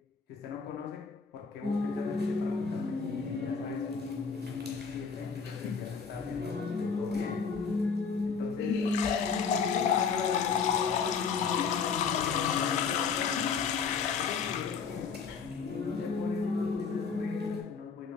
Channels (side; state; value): right; quieter; 5.7 dB